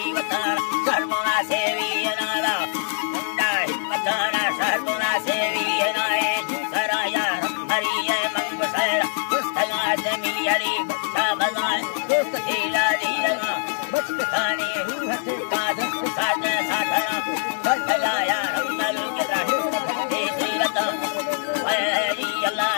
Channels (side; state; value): right; silent; 63 dB below the other